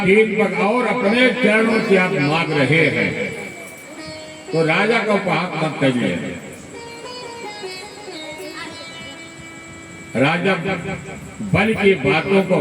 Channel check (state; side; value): identical; both; correlation 1.00